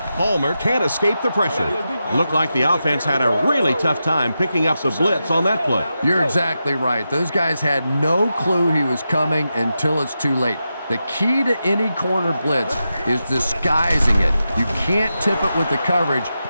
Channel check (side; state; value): both; inverted; correlation -0.89